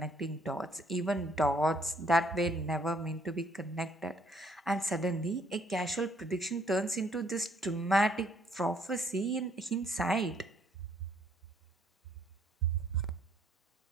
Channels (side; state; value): both; normal; correlation 0.66